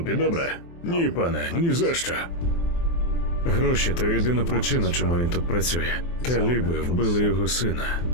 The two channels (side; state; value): right; late; 23 ms